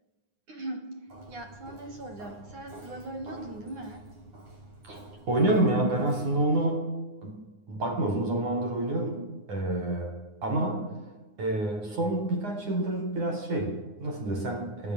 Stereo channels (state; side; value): late; left; 9.7 ms